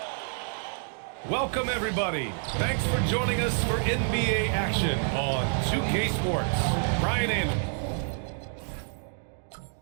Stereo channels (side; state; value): left; silent; 57 dB below the other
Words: Welcome, everybody. Thanks for joining us for NBA action on 2K Sports. Brian Amon.